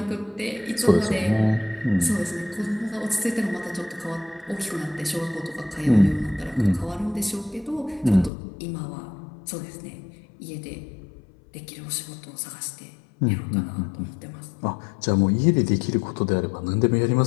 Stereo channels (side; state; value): right; drops out; at 8.3 s